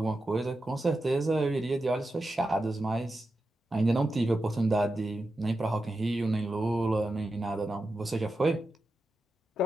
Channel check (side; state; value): both; normal; correlation 0.90